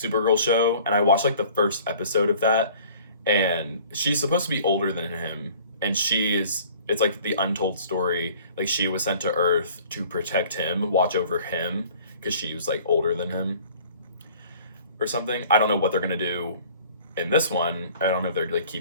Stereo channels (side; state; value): both; inverted; correlation -0.50